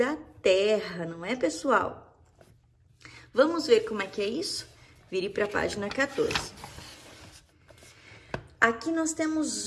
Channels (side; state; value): both; identical; correlation 1.00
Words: terra, não é, pessoal? Vamos ver como é que é isso? Vire para a página 14. Aqui nós